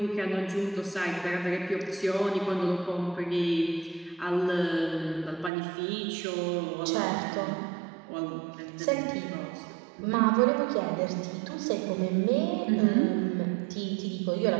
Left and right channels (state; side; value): drops out; left; at 5.5 s